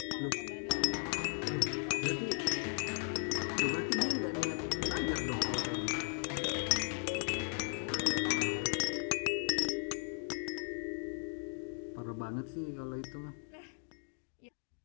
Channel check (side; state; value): right; silent; 53 dB below the other